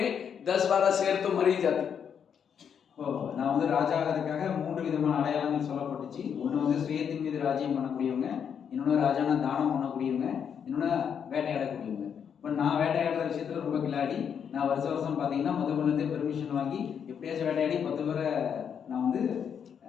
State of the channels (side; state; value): right; quieter; 7.7 dB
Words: 10-12 शेर तो मर ही जाते। நான் வந்து ராஜா ஆகிறதுக்காக 3 விதமான அடையாளங்கள் சொல்லப்பட்டுச்சு. ஒன்று வந்து சுயத்தின் மீது ராஜ்யம் பண்ணக்கூடியவங்க, இன்னொன்று ராஜான தானம் பண்ணக்கூடியவங்க, இன்னொன்று வேட்டையாடக்கூடியவங்க. இப்போ நான் வேட்டையாடுற விஷயத்துல ரொம்ப கிளாடி. நான் வருஷம் பார்த்தீங்கன்னா மதுபனத்தை பெர்மிஷன் வாங்கி எப்படியாச்சும் வேட்டையாடி 10 பேரை நான் வந்து